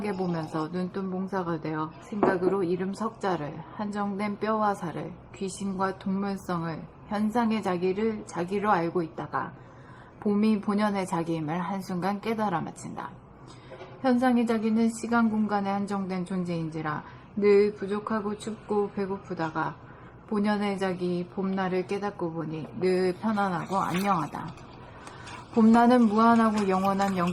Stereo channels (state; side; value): identical; both; correlation 1.00